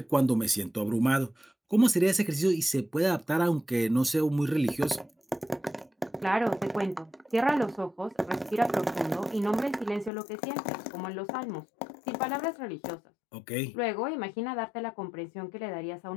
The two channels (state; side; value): drops out; right; at 10.1 s